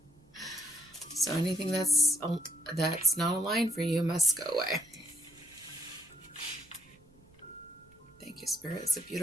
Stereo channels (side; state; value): right; noise; rumble, 29 dB below the sound